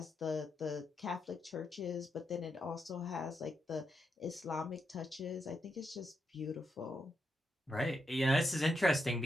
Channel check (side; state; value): both; normal; correlation 0.83